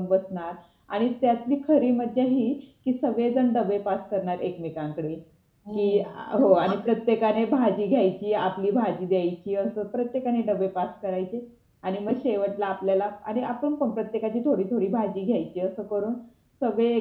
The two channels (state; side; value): identical; both; correlation 1.00